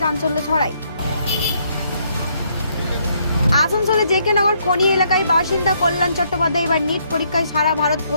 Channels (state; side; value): inverted; both; correlation -0.71